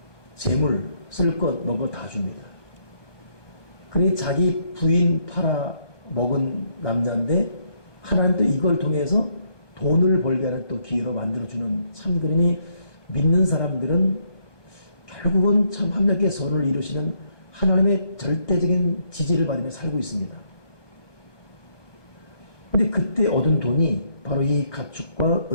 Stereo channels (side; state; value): right; late; 1.2 ms